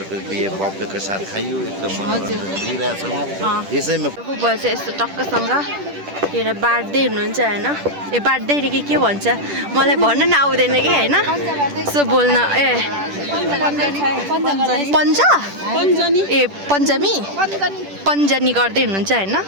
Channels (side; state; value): left; late; 10 ms